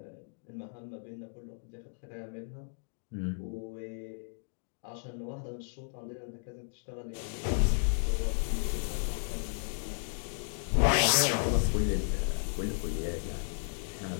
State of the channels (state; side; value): silent; right; digital silence